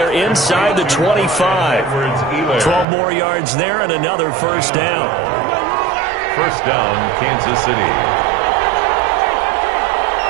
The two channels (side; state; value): left; drops out; at 2.9 s